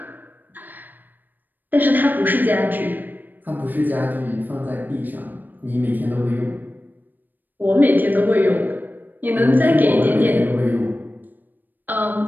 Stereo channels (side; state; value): left; late; 0.089 ms